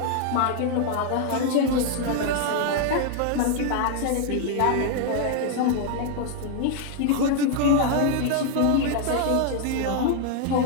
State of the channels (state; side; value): different; both; correlation 0.00